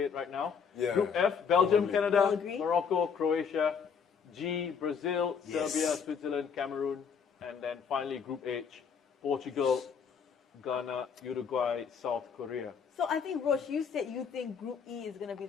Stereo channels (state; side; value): quieter; right; 6.4 dB